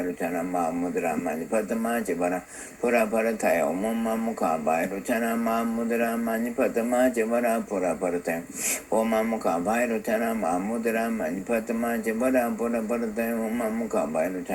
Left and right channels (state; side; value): identical; both; correlation 1.00